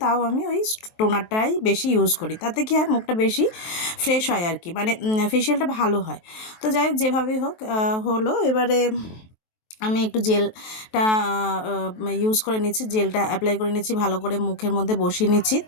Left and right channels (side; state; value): right; late; 23 ms